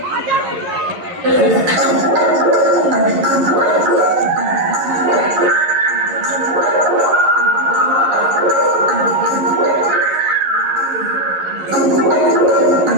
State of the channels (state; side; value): late; left; 11 ms